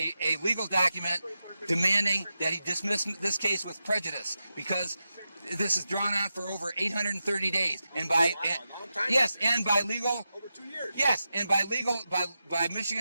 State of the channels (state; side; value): inverted; both; correlation -0.90